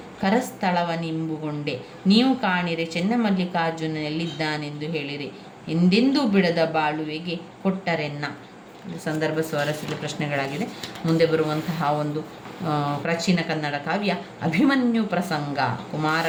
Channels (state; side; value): identical; both; correlation 1.00